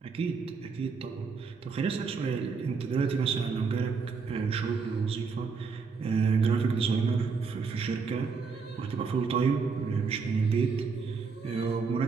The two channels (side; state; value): left; quieter; 5.1 dB